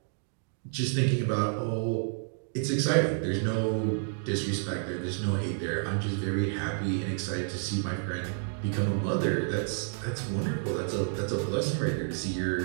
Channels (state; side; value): silent; left; digital silence